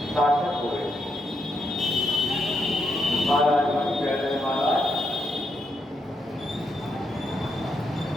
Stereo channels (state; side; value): normal; both; correlation 0.81